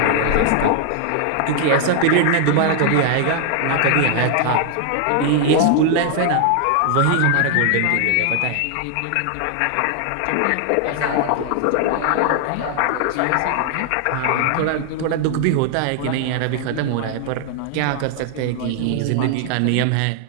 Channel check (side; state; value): both; different; correlation 0.00